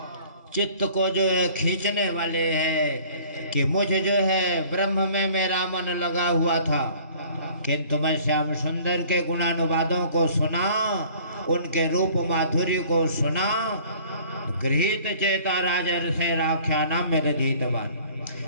चित्त को जो है खींचने वाले हैं कि मुझे जो है ब्रह्म में मेरा मन लगा हुआ था, किंतु मैं श्याम सुंदर के गुणानुवादों को सुना, उनके रूप माधुर्य को सुना, गृहीत चेता राजर से राख्याना मेरे धीतवान,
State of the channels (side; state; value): both; inverted; correlation -0.51